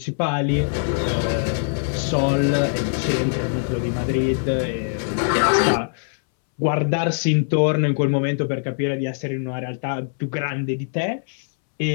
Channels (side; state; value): right; silent; 64 dB below the other